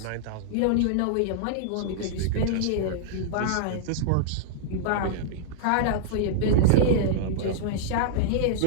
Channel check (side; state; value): both; different; correlation -0.02